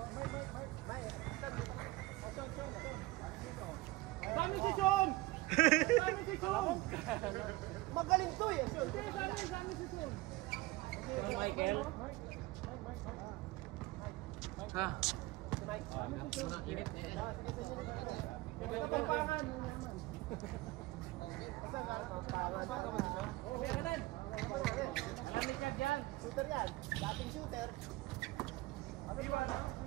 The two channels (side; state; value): left; quieter; 19.8 dB